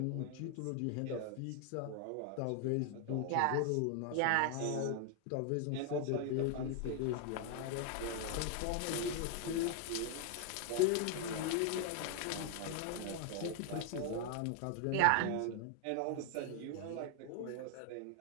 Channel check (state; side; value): different; both; correlation 0.00